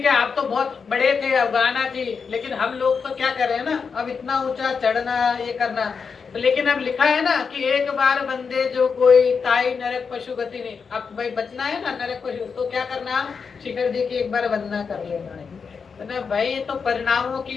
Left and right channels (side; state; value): right; quieter; 5.7 dB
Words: है, आप तो बहुत बड़े थे, अफगाना थी, लेकिन हम लोग तो क्या कर रहे हैं ना, अब इतना ऊंचा चढ़ना, ये करना, तो लेकिन अब लिखा है ना कि एक बार बंदे जो कोई ताई नरक पशु गति नहीं, अब भाई बचना है ना नरक पशु, तो क्या करना, शिखर जी की एक बार वंदना कर लेना है ना भाई, ये तो परिणामों